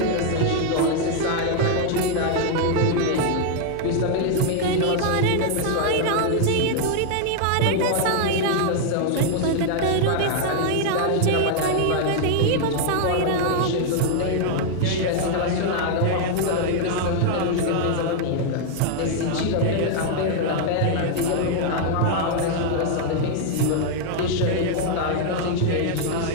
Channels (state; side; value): different; both; correlation 0.00